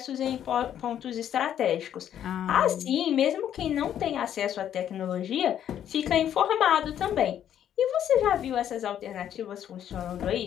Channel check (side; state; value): right; quieter; 10.2 dB